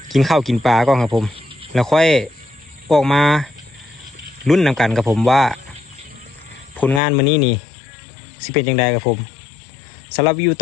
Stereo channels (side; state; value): right; drops out; at 7.0 s